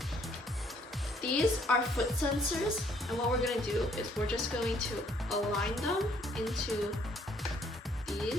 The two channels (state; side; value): normal; both; correlation 0.65